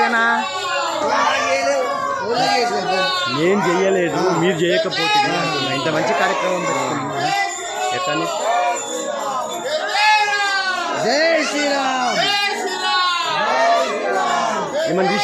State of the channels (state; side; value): identical; both; correlation 1.00